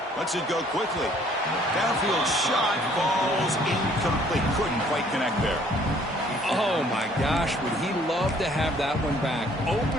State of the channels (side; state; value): both; normal; correlation 0.60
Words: Lets it go quickly. Downfield shot falls incomplete. Couldn't quite connect there. Oh, my gosh, would he love to have that one back.